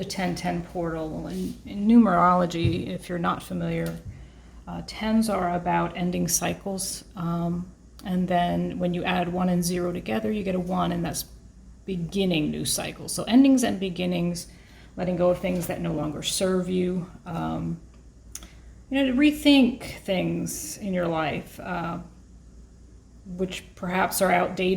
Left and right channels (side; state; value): both; identical; correlation 1.00